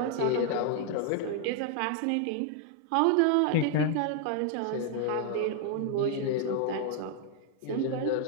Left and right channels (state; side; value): different; both; correlation 0.00